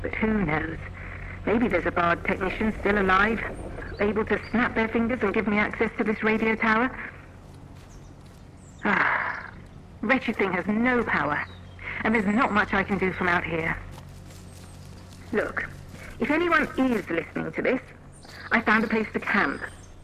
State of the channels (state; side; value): identical; both; correlation 1.00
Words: But who knows? Maybe there's a Bard technician still alive, able to snap their fingers and give me access to this radio tower. Wretched thing has no power, and there's not much I can do from out here. Look, if anyone is listening to this, I found a place to camp.